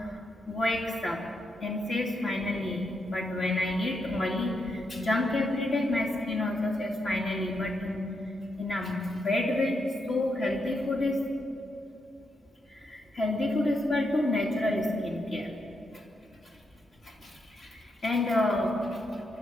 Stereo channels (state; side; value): normal; both; correlation 0.82